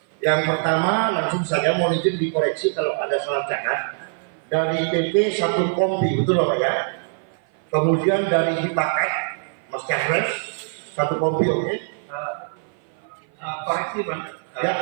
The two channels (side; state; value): left; silent; 55 dB below the other